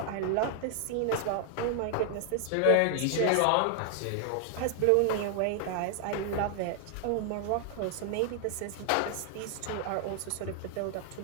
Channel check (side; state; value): both; different; correlation 0.00